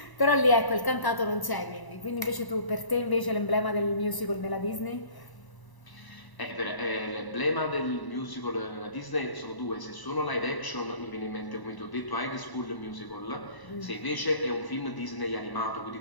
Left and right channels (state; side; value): late; right; 1.0 ms